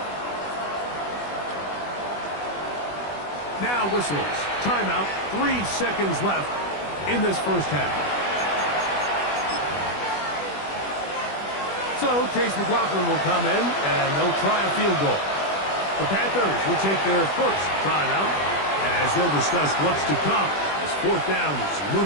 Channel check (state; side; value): late; right; 20 ms